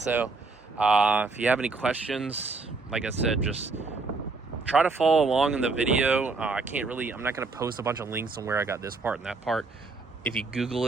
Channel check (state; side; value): quieter; left; 3.8 dB